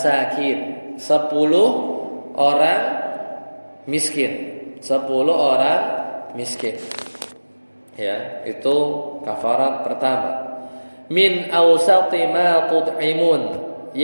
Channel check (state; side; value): inverted; both; correlation -1.00